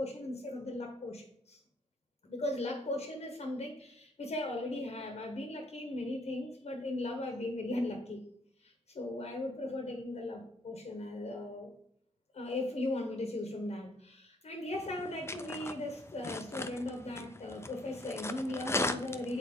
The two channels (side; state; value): both; normal; correlation 0.64